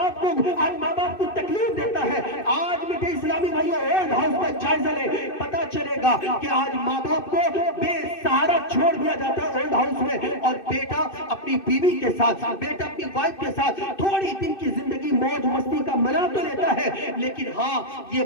باپ کو تکلیف دیتا ہے۔ آج میٹھے اسلامی بھائیوں، اولڈ ہاؤس کا جائزہ لے، پتا چلے گا کہ آج ماں باپ کو بے سہارا چھوڑ دیا جاتا ہے اولڈ ہاؤس میں، اور بیٹا اپنی بیوی کے ساتھ، بیٹا اپنی وائف کے ساتھ تھوڑی دن کی زندگی موج مستی کا منا تو لیتا ہے، لیکن ہاں یہ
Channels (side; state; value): right; late; 2.6 ms